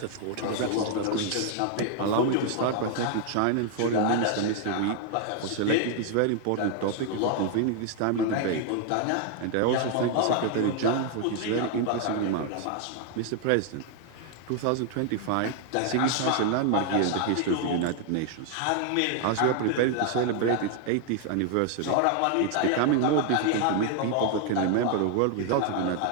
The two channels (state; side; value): different; both; correlation 0.00